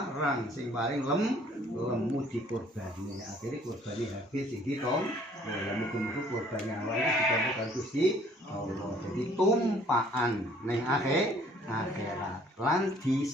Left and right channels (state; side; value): normal; both; correlation 0.58